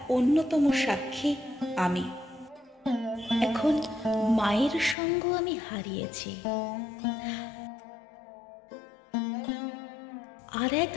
অন্যতম সাক্ষী আমি। এখন মায়ের সঙ্গ আমি হারিয়েছি, আর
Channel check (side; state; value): right; drops out; at 5.0 s